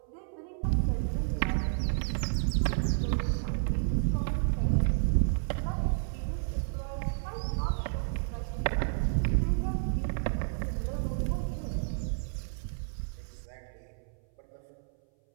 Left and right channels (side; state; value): left; silent; 57 dB below the other